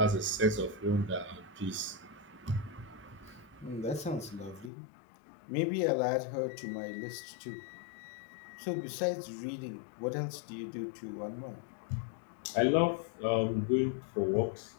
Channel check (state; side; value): drops out; right; at 4.7 s